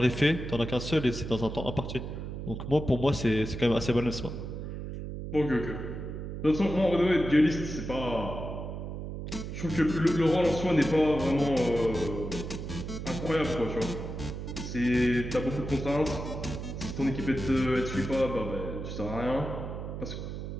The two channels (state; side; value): noise; right; hum, 7 dB below the sound